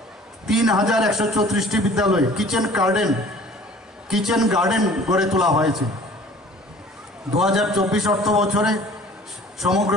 3134টি বিদ্যালয়ে কিচেন গার্ডেন গড়ে তোলা হয়েছে। 2024 অর্থ বছরে সমগ্র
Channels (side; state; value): both; normal; correlation 0.49